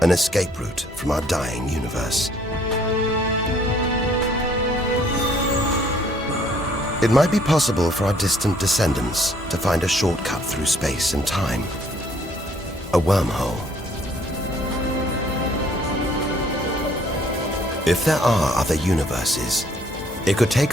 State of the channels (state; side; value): normal; both; correlation 0.62